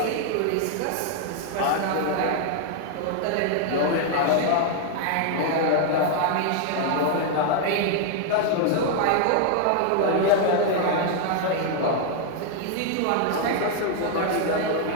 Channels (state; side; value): different; both; correlation 0.00